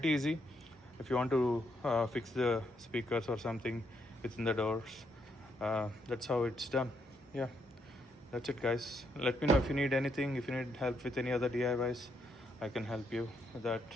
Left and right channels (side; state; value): both; normal; correlation 0.76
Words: easy if you want to fix the speakers or something within the doors. That's how it's done. Yeah, that's it guys. Let me know if you need anything, if you need help with any other DIYs, I can help you with that.